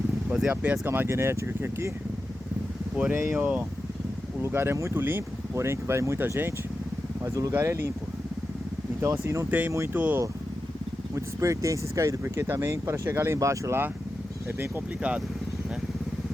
fazer a pesca magnética aqui. Porém, ó, o lugar é muito limpo, porém que vai muita gente, mas o lugar é limpo. Então assim, não tem muitos pertences caídos, porque também para chegar lá embaixo lá é bem complicado, né?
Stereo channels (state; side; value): normal; both; correlation 0.91